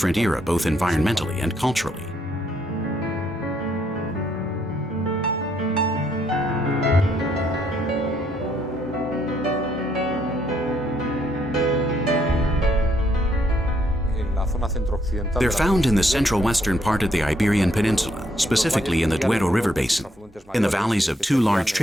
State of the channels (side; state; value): both; normal; correlation 0.72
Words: era both environmentally and culturally. They're found in the central western part of the Iberian Peninsula, specifically in the Duero River basin, in the valleys of two large